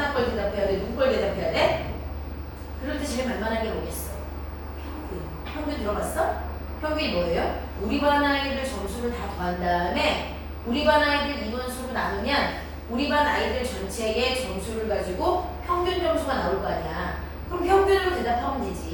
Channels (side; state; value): both; identical; correlation 1.00